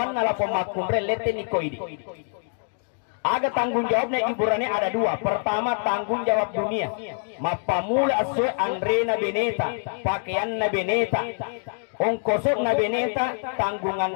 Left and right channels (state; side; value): silent; right; 62 dB below the other